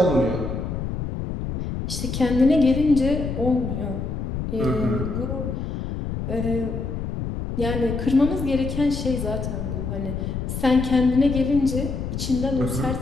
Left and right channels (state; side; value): noise; left; rumble, 4 dB below the sound